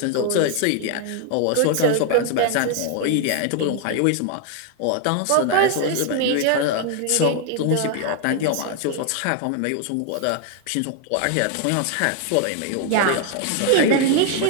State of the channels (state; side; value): different; both; correlation 0.00